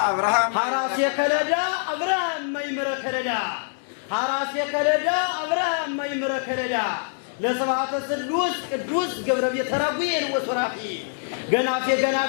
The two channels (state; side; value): silent; right; 62 dB below the other